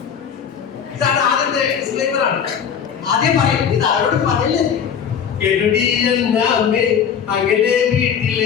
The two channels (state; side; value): quieter; right; 7.7 dB